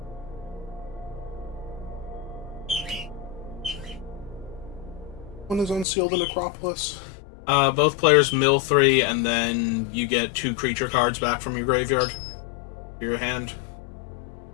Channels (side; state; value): right; drops out; at 5.9 s